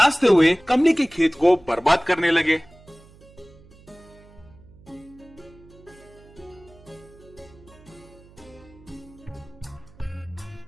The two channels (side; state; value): right; noise; hum, 24 dB below the sound